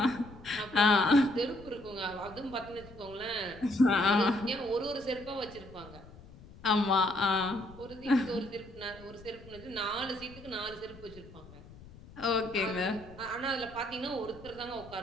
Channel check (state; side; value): noise; left; rumble, 19 dB below the sound